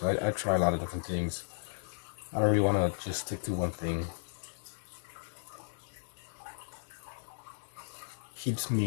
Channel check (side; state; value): right; silent; digital silence